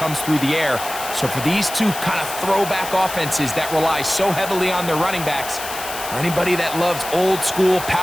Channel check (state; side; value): noise; left; hiss, 9 dB below the sound